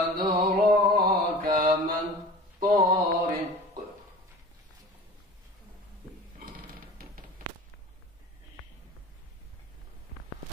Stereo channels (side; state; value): both; normal; correlation 0.39